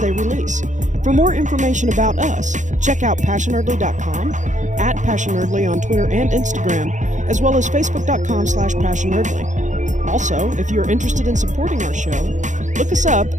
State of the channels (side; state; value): left; late; 0.36 ms